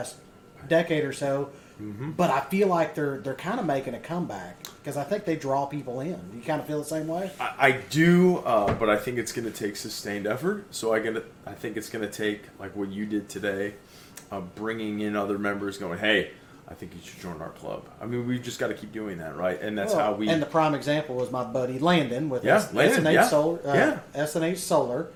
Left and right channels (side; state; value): both; identical; correlation 1.00